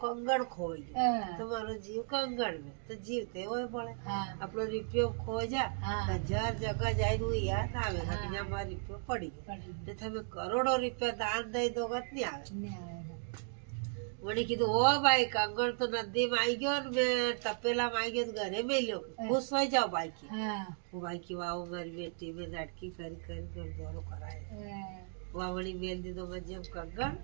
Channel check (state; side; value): silent; left; 54 dB below the other